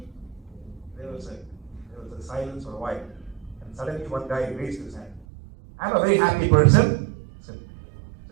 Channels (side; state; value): left; drops out; at 5.2 s